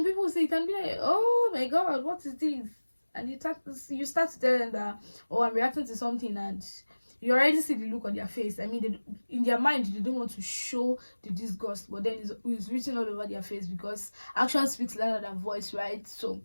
people see it and be like, oh my god, what is this? And you start to tell them that, oh, I'm reacting to something, and you already see the look on their face. I mean, in their mind, they don't want to show the disgust, but then it's written all over their face, because action speaks louder than voice, right? So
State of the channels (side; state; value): both; inverted; correlation -1.00